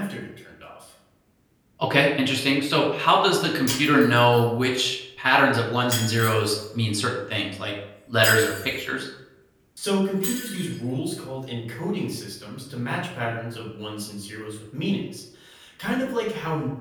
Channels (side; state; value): both; identical; correlation 1.00